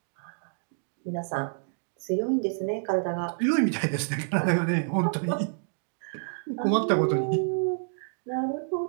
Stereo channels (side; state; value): left; silent; digital silence